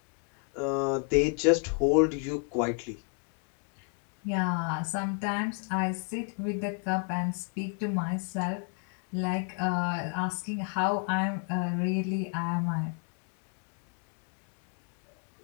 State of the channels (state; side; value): quieter; right; 38.9 dB